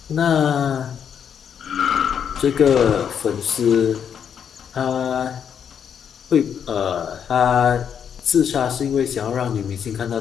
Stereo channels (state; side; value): quieter; right; 8.0 dB